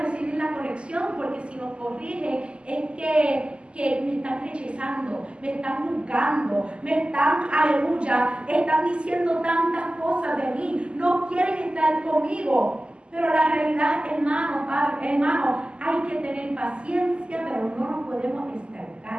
la corrección porque si nos corrigen es que me están rechazando, me están juzgando, me están, aleluya, están diciendo tantas cosas de mí, no quieren estar conmigo. Pero la realidad, hermano, padre, hermano, hay que tener paciencia, pero no nos podemos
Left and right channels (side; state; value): left; late; 0.052 ms